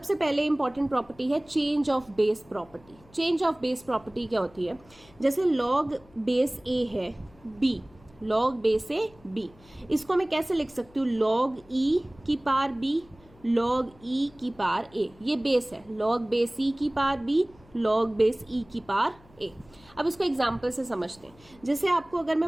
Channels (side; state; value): left; noise; hum, 26 dB below the sound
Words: पहले इंपॉर्टेंट प्रॉपर्टी है change of base property. Change of base property क्या होती है, जैसे लॉग बेस ए है b, log base a b, इसको मैं कैसे लिख सकती हूँ, लॉग ई की पावर बी, लॉग ई की पावर ए, ये बेस है, लॉग बेस ई की पावर बी, लॉग बेस ई की पावर ए। अब इसको एग्जाम्पल से समझते हैं। जैसे आपको अगर